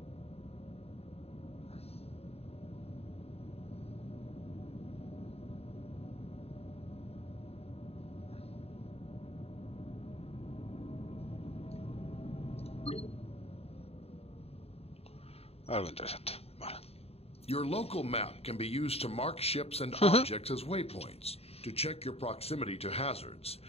Algo interesante. Vale. Your local map can be used to mark ships and objects as waypoints, to check your proximity to hazards,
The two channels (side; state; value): right; late; 0.29 ms